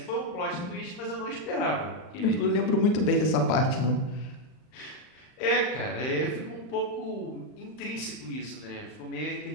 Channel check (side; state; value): right; late; 39 ms